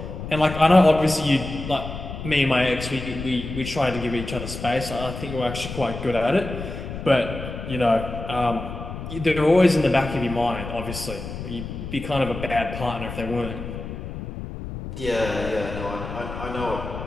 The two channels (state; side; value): noise; left; rumble, 8 dB below the sound